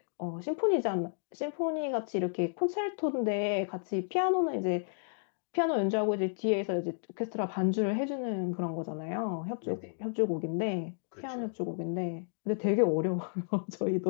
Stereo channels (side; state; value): right; silent; digital silence